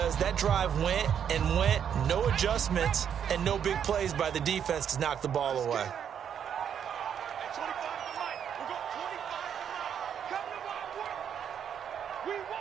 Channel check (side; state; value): left; quieter; 8.4 dB